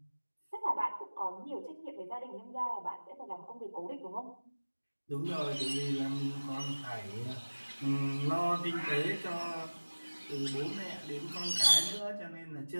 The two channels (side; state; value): both; inverted; correlation -1.00